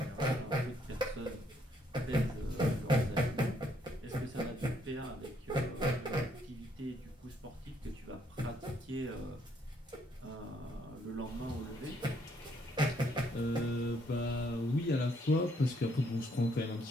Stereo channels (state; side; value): normal; both; correlation 0.70